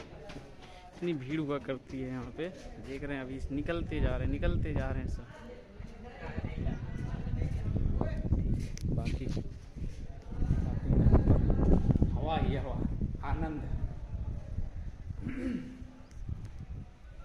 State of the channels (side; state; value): both; identical; correlation 1.00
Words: इतनी भीड़ हुआ करती है यहाँ पे, देख रहे हैं अभी निकलते जा रहे हैं सब। बाकी हवा ही हवा, आनंद है।